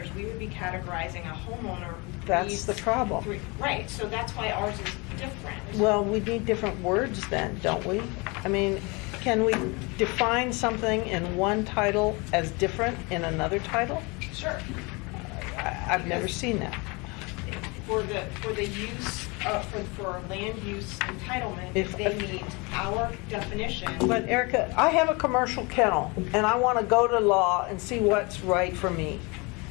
we would be categorizing a homeowner who that's needs the problem. Right, so that's why ours is different. Well, we need different words then, don't we? I mean, can we define something in one title as different in another title? Sure. I've never seen that. For the use, for land use entitlement, If- they meet our definition. But Erica, I have a commercial kennel, and I want to go to law and see what's right for me.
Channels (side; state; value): right; quieter; 27.9 dB